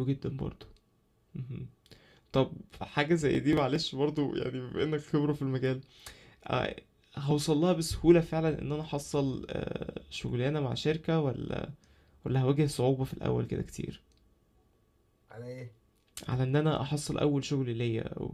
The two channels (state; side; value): identical; both; correlation 1.00